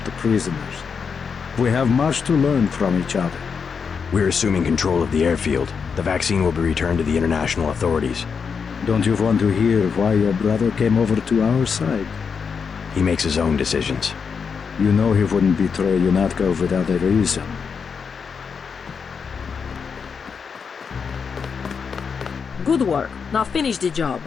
prisoners. We have much to learn from each other. We're assuming control of the airfield. The vaccine will be returned to the international authorities. Don't you want to hear why your brother came over to our side? He makes his own decisions. You know he wouldn't betray UNATCO without a reason. Good work. Now finish the job.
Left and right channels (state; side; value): quieter; right; 6.0 dB